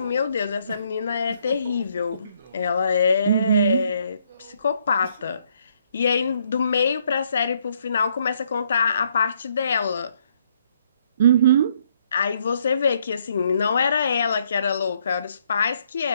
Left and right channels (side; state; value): both; inverted; correlation -0.70